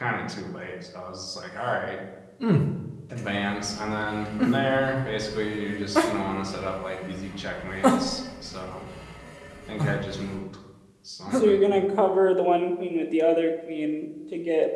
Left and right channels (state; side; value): identical; both; correlation 1.00